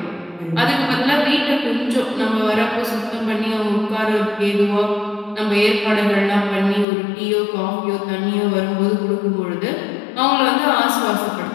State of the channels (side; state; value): right; drops out; at 6.9 s